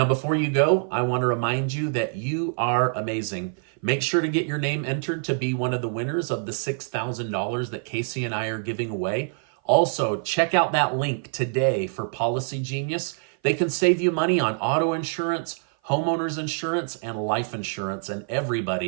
before you go, I want to remind you that you are amazing. Make sure to get your name entered to be one of the winners of the $6,000 that Casey and I are giving away. Also, check out that link today for Policy Genius. They can save you money on auto insurance, homeowners insurance, and life insurance, and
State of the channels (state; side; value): silent; left; 56 dB below the other